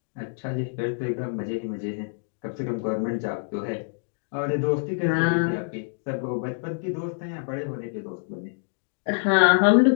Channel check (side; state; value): right; silent; digital silence